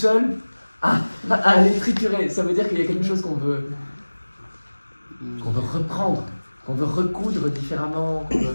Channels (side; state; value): both; inverted; correlation -1.00